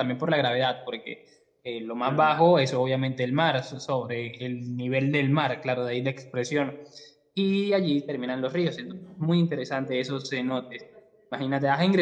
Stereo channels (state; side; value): identical; both; correlation 1.00